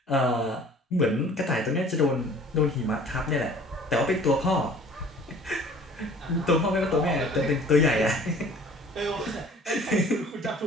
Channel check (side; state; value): both; normal; correlation 0.50